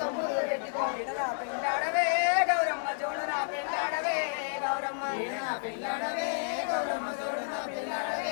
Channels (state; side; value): silent; right; 57 dB below the other